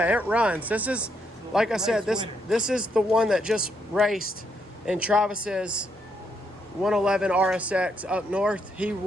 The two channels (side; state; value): both; normal; correlation 0.76